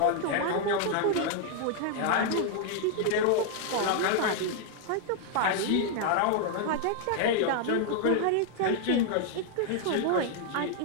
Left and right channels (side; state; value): both; different; correlation 0.00